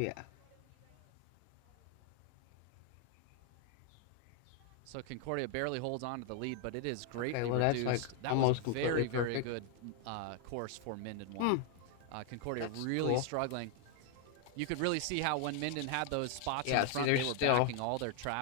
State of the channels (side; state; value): both; different; correlation 0.00